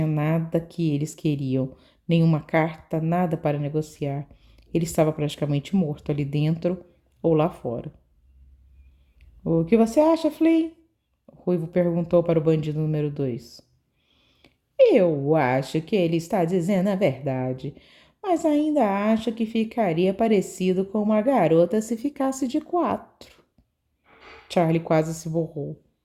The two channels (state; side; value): identical; both; correlation 1.00